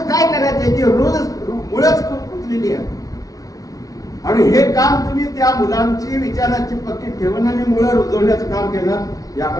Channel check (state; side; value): late; right; 0.18 ms